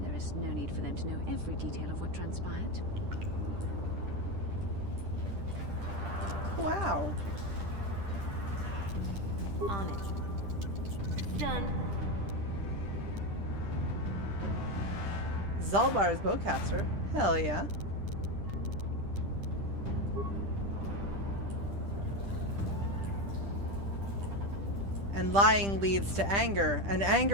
There is no need for them to know every detail of what transpired. Wow. On it. Done. Zalbar's bowcaster. Hell yeah. And lying leads to anger, and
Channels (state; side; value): late; left; 10 ms